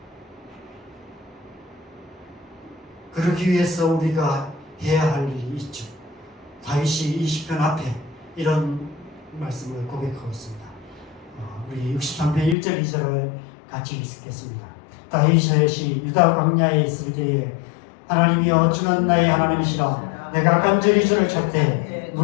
그러기 위해서 우리가 해야 할 일이 있죠. 다윗이 이 시편 앞에 이런 말씀을 고백하고 있습니다. 우리 63편 1절 2절을 같이 있겠습니다. 다윗이 유다 광야에 있을 때에 하나님이여 주는 나의 하나님이시라 내가 간절히 주를 찾되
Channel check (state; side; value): drops out; right; at 12.6 s